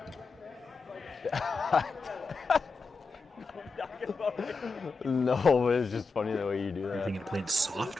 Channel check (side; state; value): right; quieter; 4.0 dB